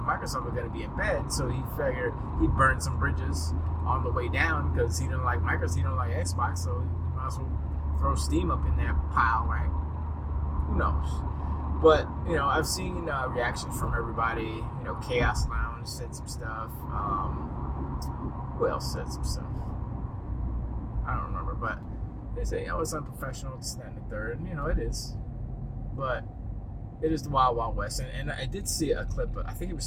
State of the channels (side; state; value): both; identical; correlation 1.00